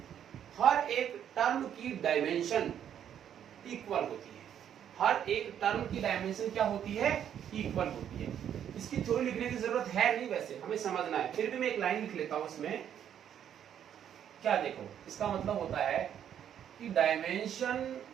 हर एक टर्म की डायमेंशन इक्वल होती है। हर एक टर्म की डायमेंशन क्या होती है? इक्वल होती है। इसकी थ्योरी लिखने की जरूरत है नहीं, वैसे हमें समझना है, फिर भी मैं एक लाइन लिख लेता हूं इसमें। क्या देखो, इसका मतलब होता है कि dimension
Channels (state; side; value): quieter; left; 9.5 dB